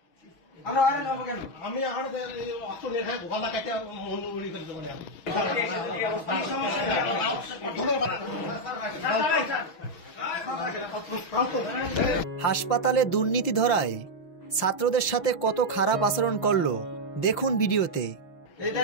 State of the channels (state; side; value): late; right; 6.3 ms